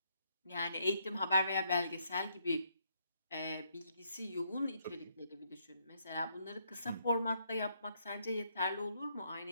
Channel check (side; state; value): both; inverted; correlation -0.73